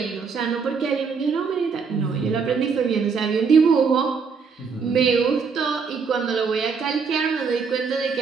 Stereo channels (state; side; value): quieter; left; 5.5 dB